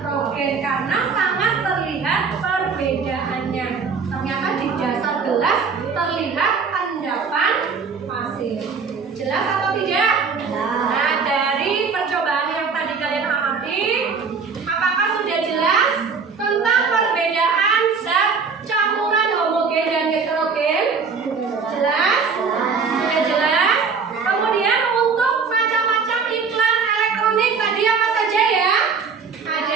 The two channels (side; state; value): left; quieter; 5.4 dB